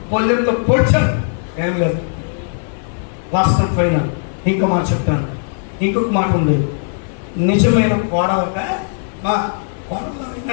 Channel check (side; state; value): right; silent; 56 dB below the other